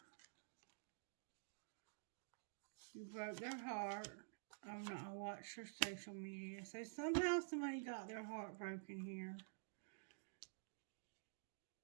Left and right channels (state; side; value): silent; left; digital silence